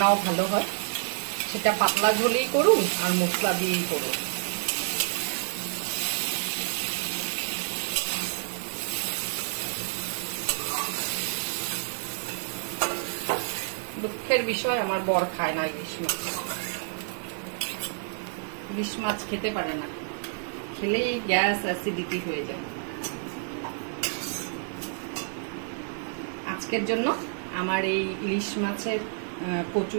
ভালো হয়, সেটা পাতলা ঝোলেই করুন আর মশলা দিয়েই করুন। দুঃখের বিষয় আমার বর খায় না ইলিশ মাছ, ইলিশ মাছ খেতে পারে না, খেলেই গ্যাস অ্যাসিডিটি হয়ে যায়। আজকের জন্য আমার এই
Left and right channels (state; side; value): silent; left; digital silence